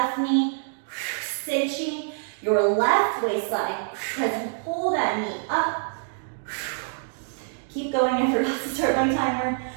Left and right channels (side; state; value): left; silent; digital silence